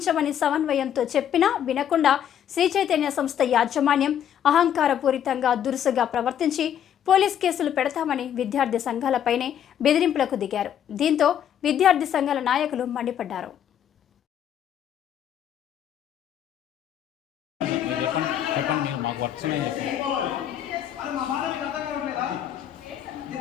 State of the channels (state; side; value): quieter; right; 9.7 dB